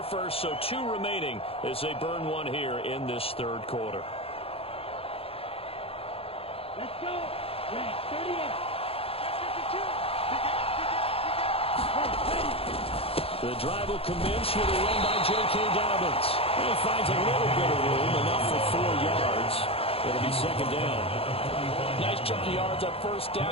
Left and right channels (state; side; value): late; right; 0.28 ms